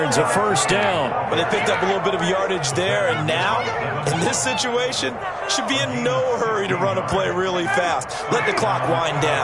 a first down. But they picked up a little bit of yardage there, and now, in this situation, should be in no hurry to run a play really fast. Let the clock wind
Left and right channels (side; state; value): both; identical; correlation 1.00